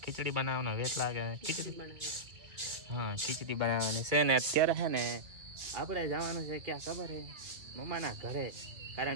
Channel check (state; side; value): late; left; 2.3 ms